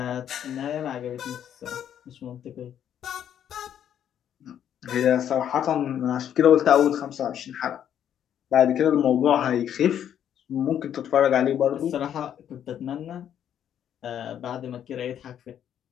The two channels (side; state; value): right; quieter; 9.7 dB